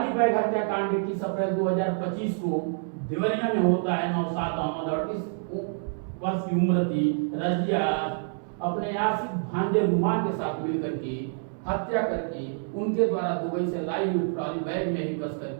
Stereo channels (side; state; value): left; silent; 60 dB below the other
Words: बैग हत्याकांड 21 अप्रैल 2025 को देवरिया में होता है। नौशाद अहमद 38 वर्ष की उम्र थी। रजिया अपने आशिक भांजे रुमान के साथ मिलकर के हत्या करके उनके द्वारा दुबई से लाई हुई ट्रॉली बैग में ही कस